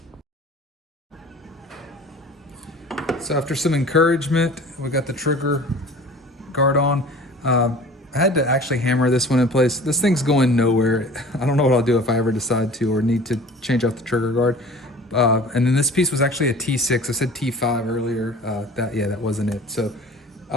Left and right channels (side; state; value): both; normal; correlation 0.43